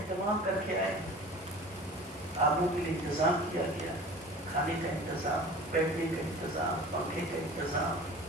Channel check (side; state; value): both; normal; correlation 0.40